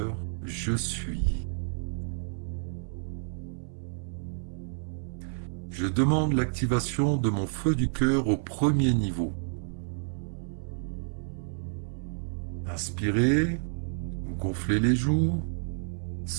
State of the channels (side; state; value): left; silent; 58 dB below the other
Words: je suis. Je demande l'activation de mon feu du cœur au premier niveau. Inspirez, gonflez les joues,